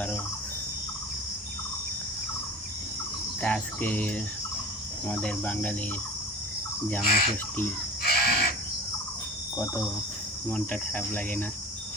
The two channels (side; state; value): both; normal; correlation 0.36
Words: আরও। তা আজকে আমাদের বাঙালির জামাই ষষ্ঠী, কত মনটা খারাপ লাগে না?